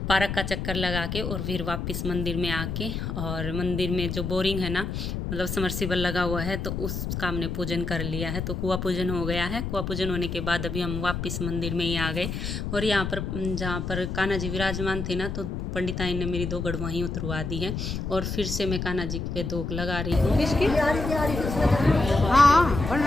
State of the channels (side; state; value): left; noise; rumble, 4 dB below the sound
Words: पार्क का चक्कर लगा के और फिर वापस मंदिर में आके, और मंदिर में जो बोरिंग है ना, मतलब समरसीबल लगा हुआ है, तो उसका हमने पूजन कर लिया है। तो कुआं पूजन हो गया है। कुआं पूजन होने के बाद अभी हम वापस मंदिर में ही आ गए। और यहाँ पर जहाँ पर कान्हा जी विराजमान थे ना, तो पंडिताई ने मेरी दो गड़ वहीं उतरवा दी है। और फिर से मैं कान्हा जी पे दोक लगा रही हूँ। हाँ, बन